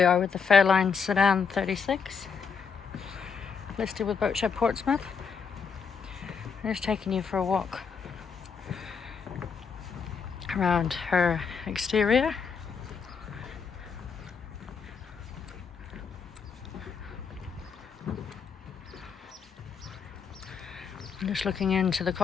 are with the Fairline Sedan 36, listed with Boatshed Portsmouth. I'm just taking you for a walk around her exterior. I'm just looking into the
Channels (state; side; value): quieter; right; 5.9 dB